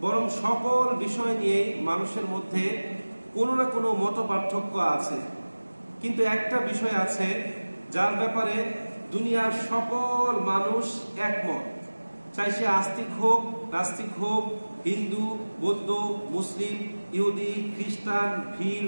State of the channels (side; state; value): both; inverted; correlation -1.00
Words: বরং সকল বিষয় নিয়ে মানুষের মধ্যে কোনো না কোনো মত পার্থক্য আছে। কিন্তু একটা বিষয় আছে যার ব্যাপারে দুনিয়ার সকল মানুষ একমত, চাই সে আস্তিক হোক নাস্তিক হোক, হিন্দু বৌদ্ধ মুসলিম ইহুদি খ্রিস্টান ভিল